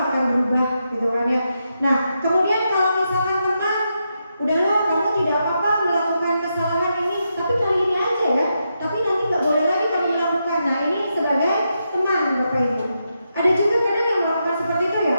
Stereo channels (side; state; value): both; inverted; correlation -0.84